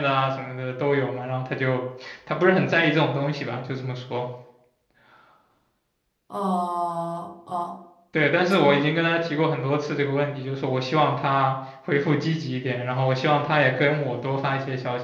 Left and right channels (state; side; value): identical; both; correlation 1.00